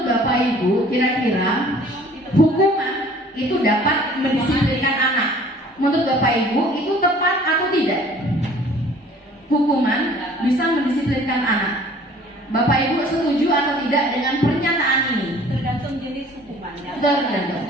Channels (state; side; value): normal; both; correlation 0.52